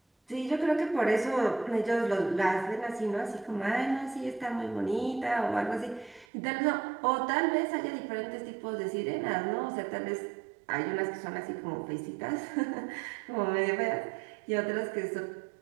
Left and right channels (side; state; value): left; drops out; at 6.2 s